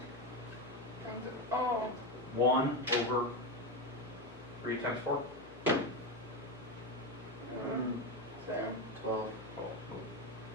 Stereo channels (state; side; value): noise; left; hum, 20 dB below the sound